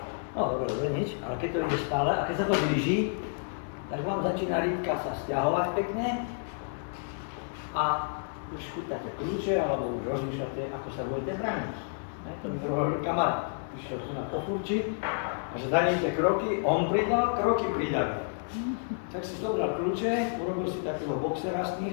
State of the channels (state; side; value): silent; right; digital silence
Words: No dobre, nič, ale keď to ide stále a keď sa to blíži, tak vám začína rýbka sa sťahovať pekne a už chytáte kľúče alebo už rozmýšľate, ako sa budete brániť. To mi hovoril kamarát, išiel tu na pofurči a že danejte kroky, on pridal, kroky pridali. Tak si zobral kľúče, urobil si takého boxera z